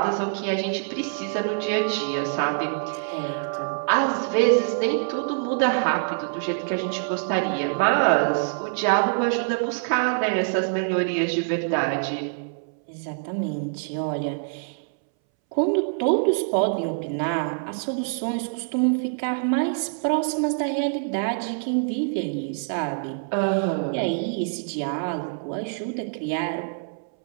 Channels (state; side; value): silent; left; 62 dB below the other